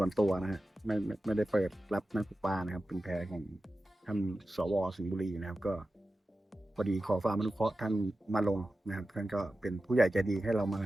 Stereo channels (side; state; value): both; normal; correlation 0.93